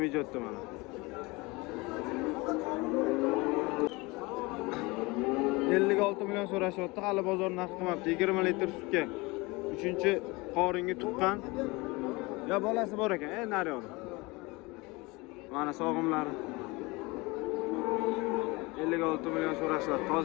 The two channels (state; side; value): quieter; right; 24.3 dB